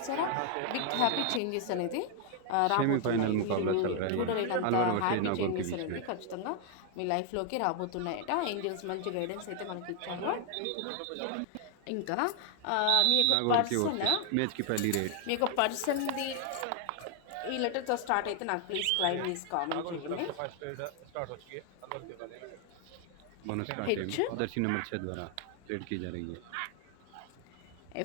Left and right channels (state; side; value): different; both; correlation 0.00